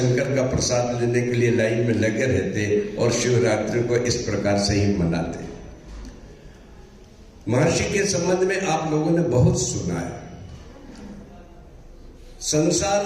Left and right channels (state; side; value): identical; both; correlation 1.00